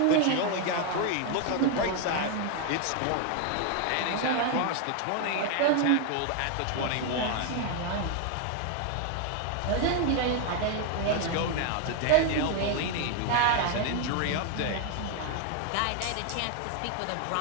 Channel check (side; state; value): both; different; correlation 0.01